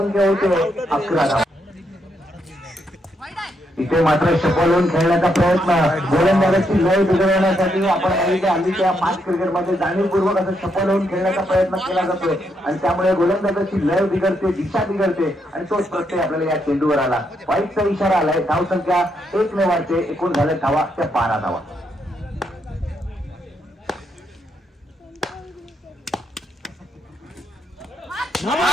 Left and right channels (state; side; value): normal; both; correlation 0.78